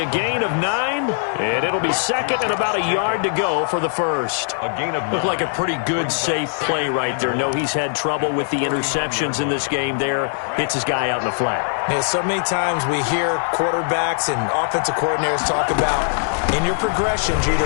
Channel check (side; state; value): right; silent; digital silence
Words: gain of 9, and it'll be second and about a yard to go for the first. A gain of 9. Looked like a pretty good, safe play right there. No, he's had trouble with the interceptions in this game there. Hits his guy out in the flat. Yeah, so many times we hear quarterbacks and offensive coordinators talk about in your progressions, you're